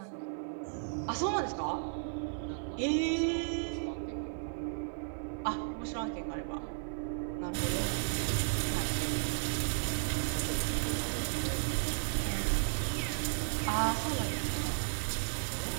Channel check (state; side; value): silent; left; 55 dB below the other